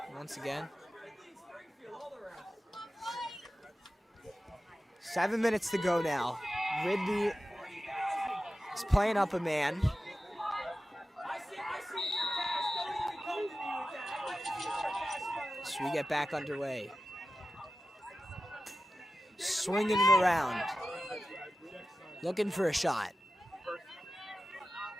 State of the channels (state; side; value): normal; both; correlation 0.93